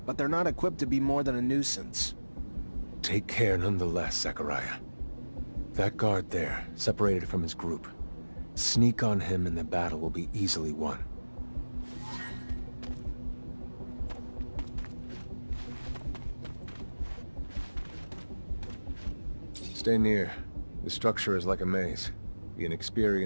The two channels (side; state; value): both; inverted; correlation -1.00